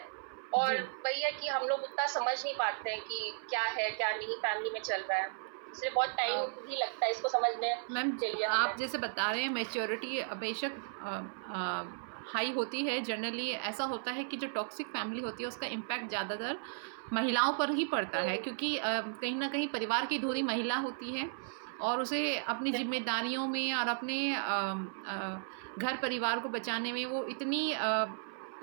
और वही है कि हम लोग उतना समझ नहीं पाते हैं कि क्या है क्या नहीं फैमिली में चल रहा है, इसलिए बहुत टाइम भी लगता है इसको समझने के लिए। आप जैसे बता रहे हैं मैच्योरिटी बेशक हाई होती है। जनरली ऐसा होता है कि जो टॉक्सिक फैमिली होती है उसका इम्पैक्ट ज़्यादातर महिलाओं पर ही पड़ता है, क्योंकि कहीं ना कहीं परिवार की धुरी महिला होती है और उसे अपनी जिम्मेदारियों में और अपने घर परिवार को बचाने में वो इतनी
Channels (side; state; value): left; silent; 54 dB below the other